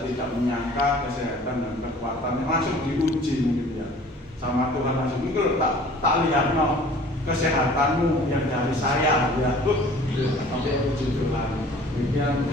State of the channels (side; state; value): both; normal; correlation 0.49